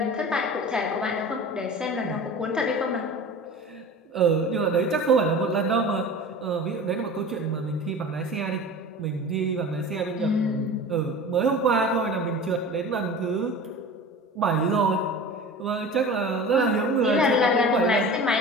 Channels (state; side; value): normal; both; correlation 0.36